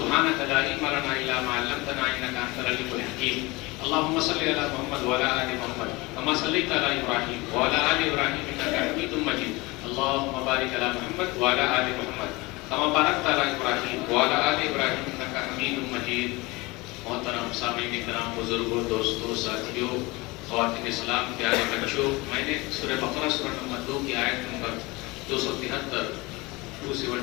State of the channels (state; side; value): quieter; right; 23.3 dB